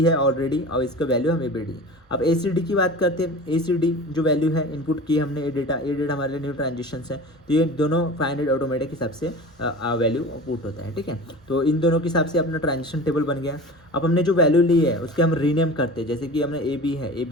है ऑलरेडी और इसका वैल्यू हम ए बी डी। अब ए सी डी की बात करते हैं। ए सी डी जो वैल्यू है इनपुट की हमने, ये डेटा हमारे लिए न्यू ट्रांजेक्शन है, तो ये दोनों 500 ऑटोमेटिक हिसाब से वैल्यू पुट होता है, ठीक है। तो इन दोनों के हिसाब से अपना ट्रांजेक्शन टेबल बन गया। अब हमने जो वैल्यू ली है उसके हम रीनेम करते हैं, जैसे कि हमने ए बी है, ए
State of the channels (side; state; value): both; normal; correlation 0.36